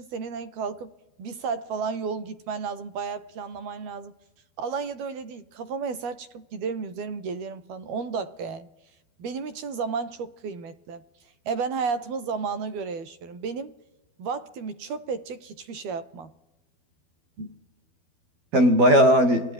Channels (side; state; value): left; late; 12 ms